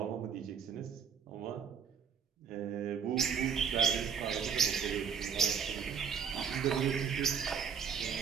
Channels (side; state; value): left; quieter; 6.9 dB